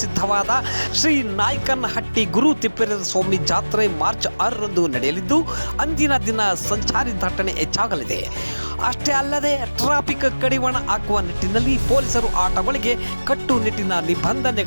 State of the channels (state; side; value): inverted; both; correlation -1.00